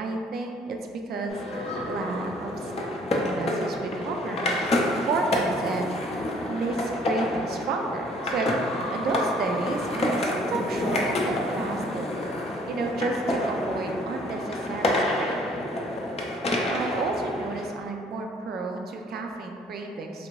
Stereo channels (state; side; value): normal; both; correlation 0.58